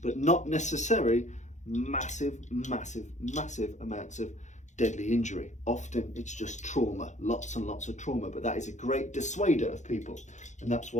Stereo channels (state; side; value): late; right; 0.35 ms